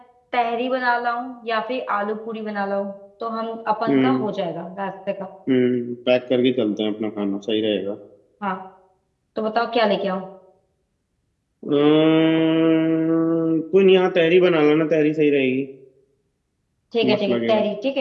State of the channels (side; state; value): both; identical; correlation 1.00